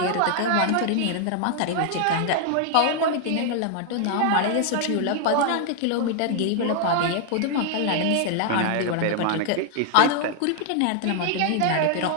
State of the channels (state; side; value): different; both; correlation 0.00